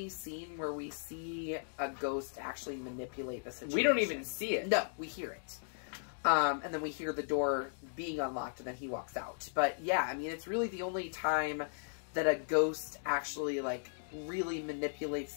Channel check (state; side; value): silent; right; digital silence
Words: scene where we see a ghost actually manipulate the situation. We don't even see it. No, we hear it. And then we hear the door being unlocked, and then he walks out. But yeah, I mean, it's really the only time that a ghost actually, like, really manipulates